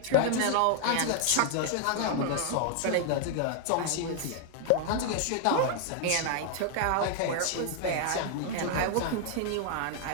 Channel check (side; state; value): both; different; correlation 0.00